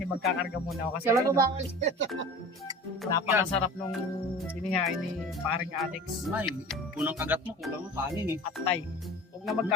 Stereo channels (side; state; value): both; normal; correlation 0.38